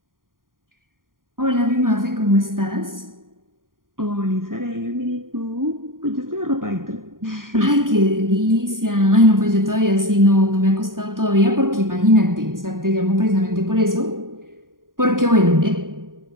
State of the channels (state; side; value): late; left; 0.91 ms